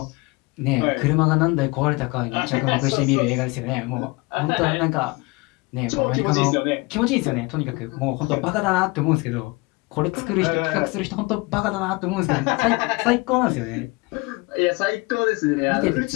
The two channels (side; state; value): right; quieter; 25.4 dB